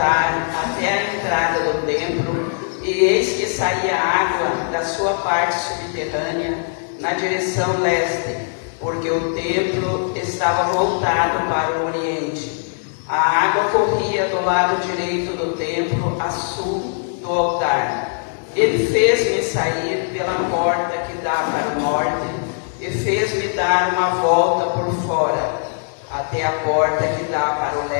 até a entrada do templo, e eis que saía água da sua parte subterrânea na direção leste, porque o templo estava voltado para o oriente. A água corria do lado direito do templo, a sul do altar. Ele fez-me sair pela porta que dá para o norte, e fez-me dar uma volta por fora, até a porta que dá para o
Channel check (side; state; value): right; silent; 65 dB below the other